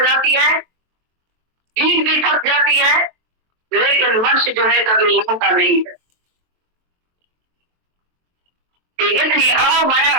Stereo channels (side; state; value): left; late; 23 ms